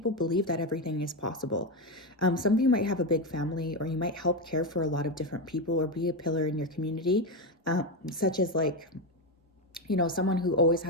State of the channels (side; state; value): both; normal; correlation 0.11